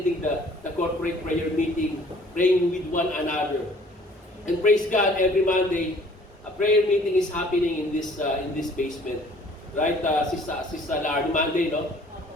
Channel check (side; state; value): both; normal; correlation 0.55